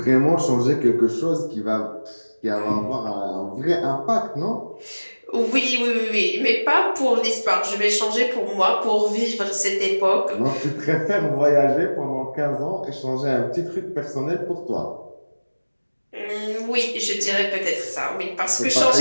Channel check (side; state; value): both; inverted; correlation -1.00